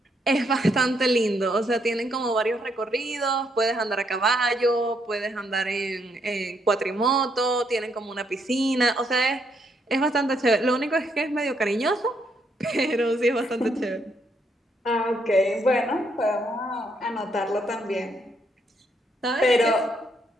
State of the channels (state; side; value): normal; both; correlation 0.74